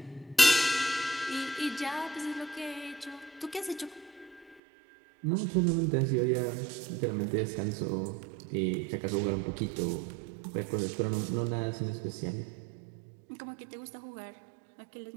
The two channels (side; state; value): left; drops out; at 4.6 s